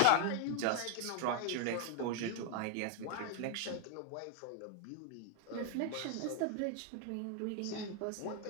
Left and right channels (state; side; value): different; both; correlation 0.00